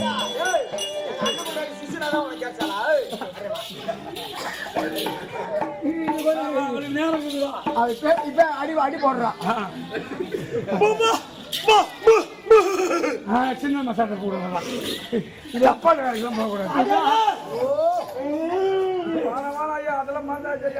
இப்ப அடி அடி போடுறான். சின்ன மசாலா போடுறதா இது அப்பா வேலைக்கெல்லாம் போகக்கூடாது. அதெல்லாம்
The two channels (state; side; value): identical; both; correlation 1.00